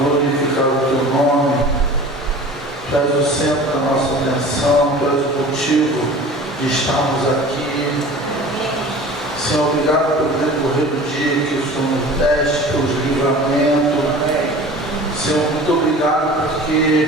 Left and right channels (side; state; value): both; normal; correlation 0.41